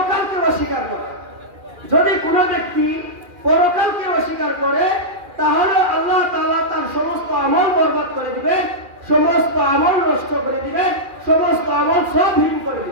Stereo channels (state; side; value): late; left; 2.4 ms